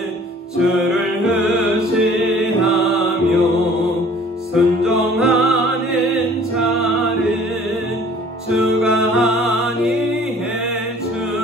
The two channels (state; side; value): normal; both; correlation 0.52